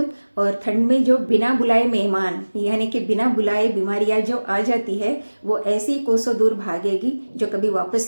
और ठंड में जो बिना बुलाए मेहमान यानी कि बिना बुलाए बीमारियां जो आ जाती है, वो ऐसी कोसों दूर भागेगी जो कभी वापस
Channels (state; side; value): inverted; both; correlation -1.00